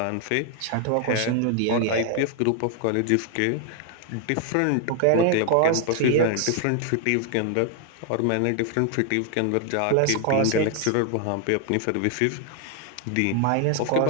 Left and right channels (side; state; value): both; different; correlation 0.01